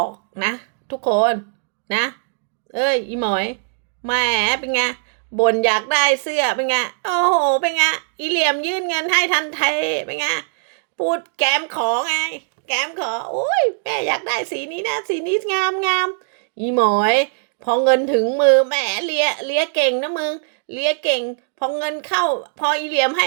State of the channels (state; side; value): silent; left; digital silence